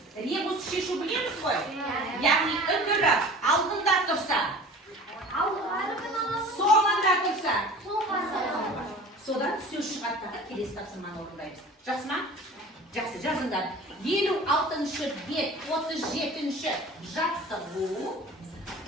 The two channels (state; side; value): normal; both; correlation 0.41